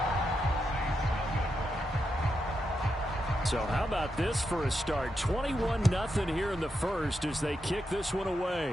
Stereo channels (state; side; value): normal; both; correlation 0.85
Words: So how about this for a start? 21-0 here in the first as they kick this one